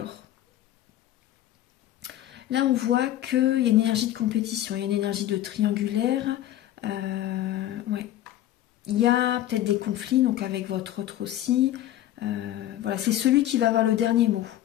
là, on voit qu'il y a une énergie de compétition, il y a une énergie de triangulaire. Ouais. Il y a peut-être des conflits, donc avec votre autre aussi. Voilà, c'est celui qui va avoir le dernier mot.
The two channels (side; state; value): right; quieter; 13.1 dB